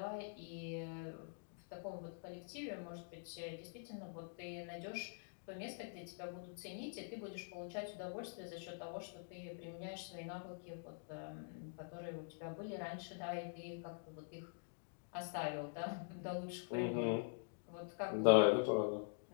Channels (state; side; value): silent; right; digital silence